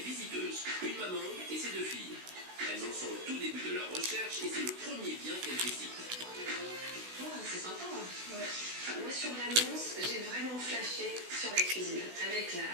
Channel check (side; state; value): left; late; 16 ms